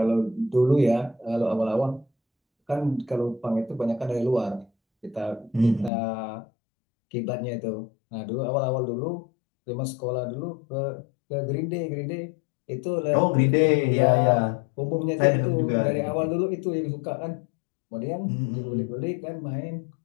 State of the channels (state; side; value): drops out; right; at 5.9 s